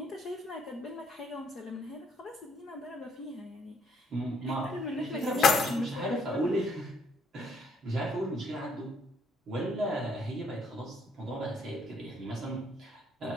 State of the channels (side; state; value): both; normal; correlation 0.67